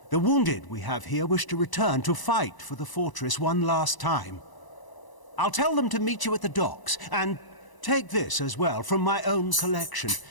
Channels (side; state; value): right; late; 1.0 ms